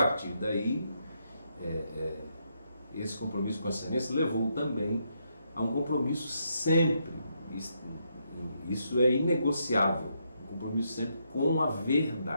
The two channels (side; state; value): both; inverted; correlation -0.78